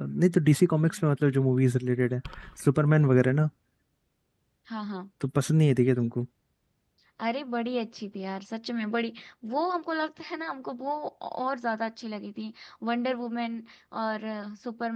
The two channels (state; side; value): identical; both; correlation 1.00